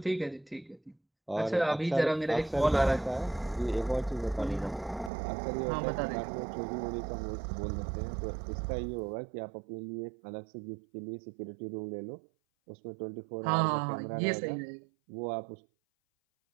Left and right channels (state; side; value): drops out; left; at 5.1 s